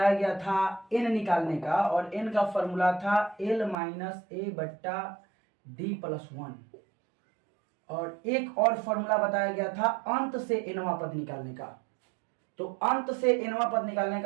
गया था n निकालने का, और n का फॉर्मूला था l माइनस a बट्टा डी प्लस 1। और एक और फॉर्मूला बताया गया था अंत से एनवां पद निकालने का। तो अंत से एनवां पद निकालने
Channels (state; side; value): drops out; left; at 3.8 s